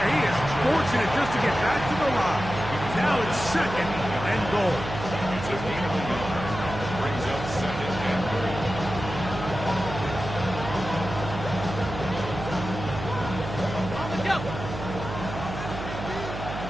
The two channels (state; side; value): noise; right; hum, 8 dB below the sound